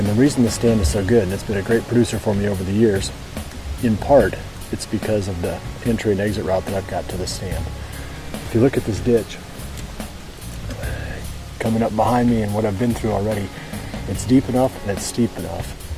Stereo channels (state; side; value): identical; both; correlation 1.00